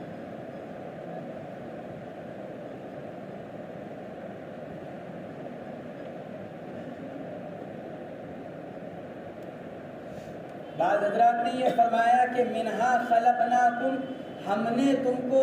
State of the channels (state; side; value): identical; both; correlation 1.00